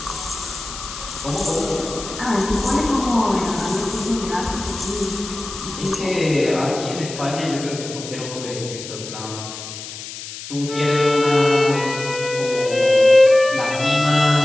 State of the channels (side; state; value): left; noise; hiss, 11 dB below the sound